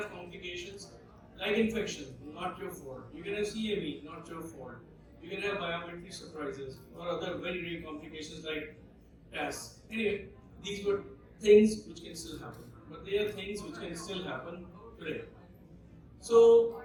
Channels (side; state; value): both; identical; correlation 1.00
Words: complications like infection, not your fault. You can have CME, not your fault. You can have biometry surprises or other very, very complications like TAS. Anyway, these were things which can still happen, but they are things which can still happen today. So